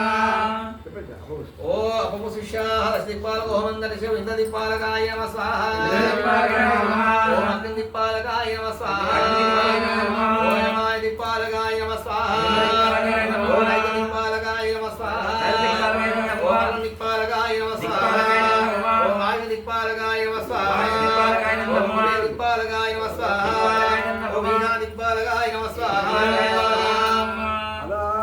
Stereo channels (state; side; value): identical; both; correlation 1.00